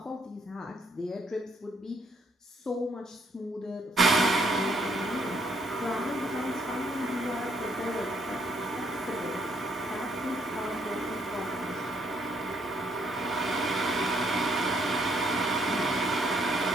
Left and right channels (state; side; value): normal; both; correlation 0.69